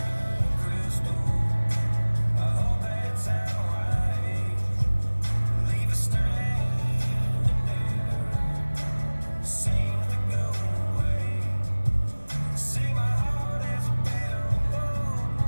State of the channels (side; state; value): both; inverted; correlation -1.00